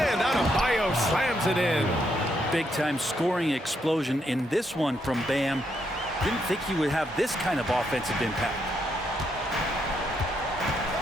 Adebayo slams it in. Big-time scoring explosion in this one from Bam. Didn't think he would have this kind of offensive impact.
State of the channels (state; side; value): normal; both; correlation 0.77